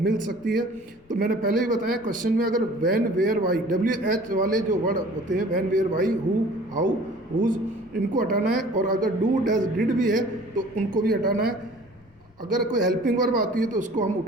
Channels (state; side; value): noise; left; rumble, 30 dB below the sound